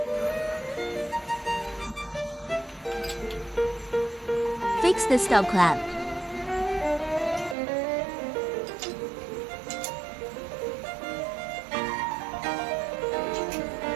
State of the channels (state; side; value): drops out; left; at 7.6 s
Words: Fix the stop clamp.